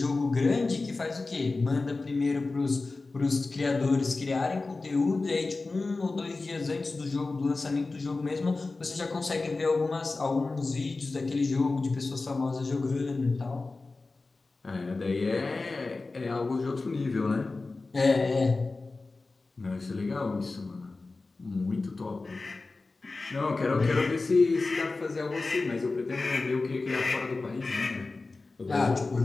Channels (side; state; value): right; quieter; 3.6 dB